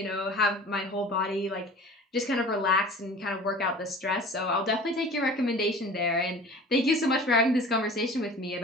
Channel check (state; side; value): normal; both; correlation 0.41